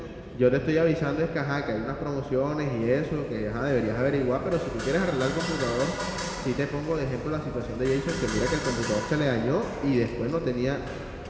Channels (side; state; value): both; identical; correlation 1.00